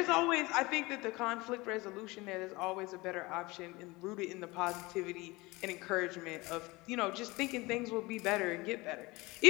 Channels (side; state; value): right; quieter; 22.6 dB